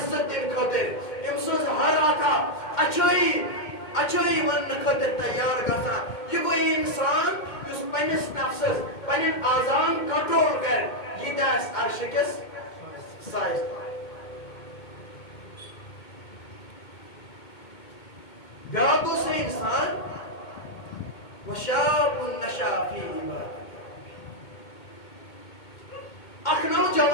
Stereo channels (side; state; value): right; late; 2.2 ms